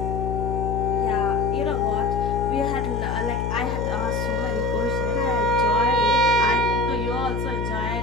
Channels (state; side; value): noise; left; hum, 3 dB below the sound